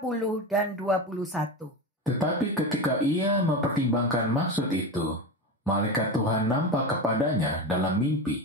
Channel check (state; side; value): normal; both; correlation 0.21